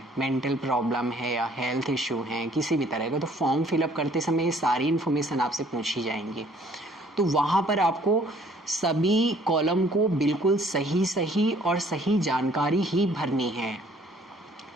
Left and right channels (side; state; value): both; normal; correlation 0.59